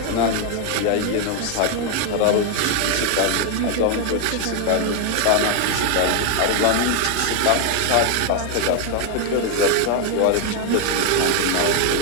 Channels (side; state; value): both; different; correlation 0.01